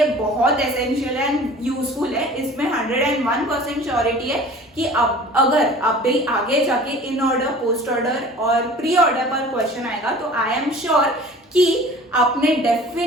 बहुत essential and useful है. इसमें 101% surety है कि अब अगर आप भी आगे जाके इन ऑर्डर, पोस्ट ऑर्डर और प्री ऑर्डर पर क्वेश्चन आएगा तो आई एम श्योर कि आपने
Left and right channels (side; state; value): both; normal; correlation 0.44